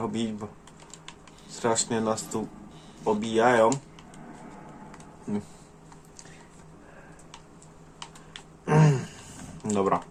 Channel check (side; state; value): both; identical; correlation 1.00